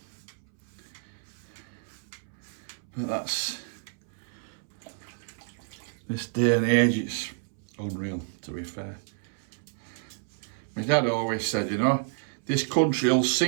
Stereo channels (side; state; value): left; silent; 58 dB below the other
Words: But that's, this day and age, it's unreal, to be fair. My dad always said, you know, this country will